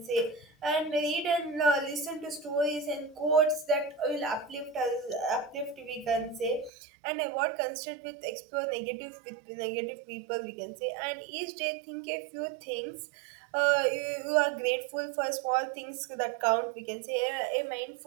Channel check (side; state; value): left; drops out; at 6.7 s